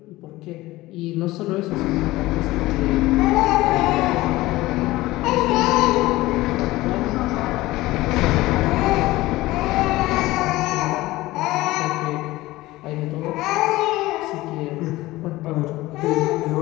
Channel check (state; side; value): quieter; right; 18.4 dB